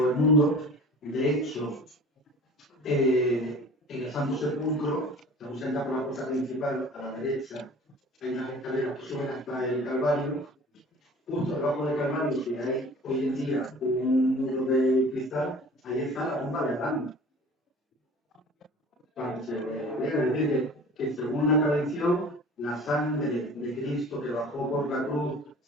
el mundo. De hecho, en el Santo Sepulcro, según se entra por la puerta principal, a la derecha, hay unas escaleras que suben hasta el Calvario. Justo debajo del Calvario, que hay hoy en día un muro de cristal, ahí está la tumba de Adán. Para que se vea, es decir, que según la tradición, la sangre de Cristo que bajó por la cruz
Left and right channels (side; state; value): both; normal; correlation 0.43